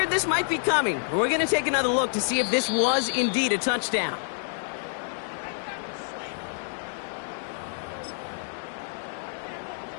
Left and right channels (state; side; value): silent; right; digital silence